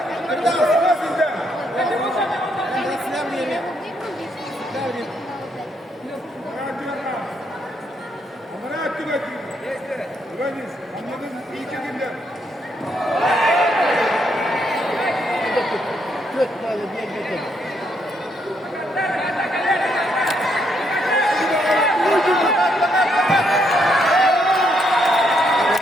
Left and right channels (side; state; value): both; normal; correlation 0.75